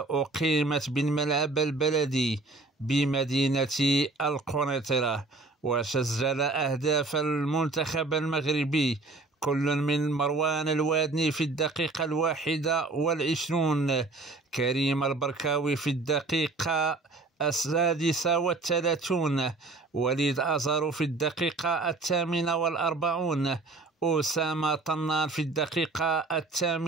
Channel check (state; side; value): quieter; left; 3.5 dB